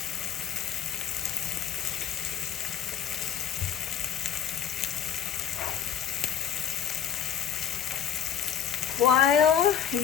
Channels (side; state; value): right; quieter; 9.0 dB